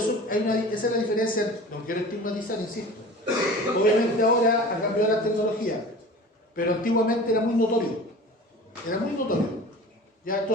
esa es la diferencia. No quiero estigmatizar, insisto. Obviamente ahora ha cambiado la tecnología, pero antiguamente era muy notorio. Era muy notorio. Ya,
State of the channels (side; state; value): both; normal; correlation 0.39